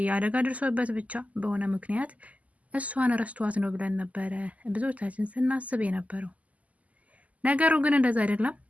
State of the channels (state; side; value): late; left; 0.073 ms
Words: አደጋ ደርሶበት ብቻ በሆነ ምክንያት እሷን ረስቷት ነው ብለን ነበረ ብዙዎቻችን ስናስብ የነበረው። ነገሩ ግን እንደዛ አይደለም።